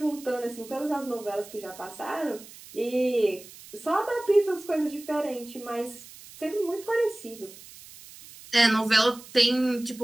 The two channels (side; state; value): right; noise; hiss, 18 dB below the sound